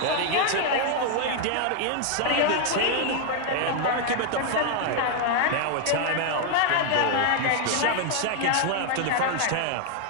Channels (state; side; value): different; both; correlation 0.00